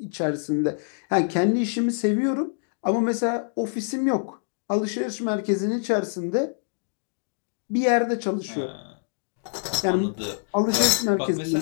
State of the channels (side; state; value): right; silent; digital silence